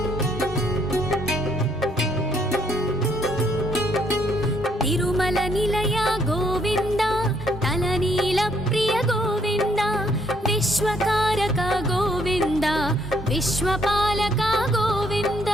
ತಿರುಮಲ ನಿಲಯ ಗೋವಿಂದ ತಲನೀಲ ಪ್ರಿಯ ಗೋವಿಂದ ವಿಶ್ವಕಾರಕ ಗೋವಿಂದ ವಿಶ್ವಪಾಲಕ ಗೋವಿಂದ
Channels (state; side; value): normal; both; correlation 0.69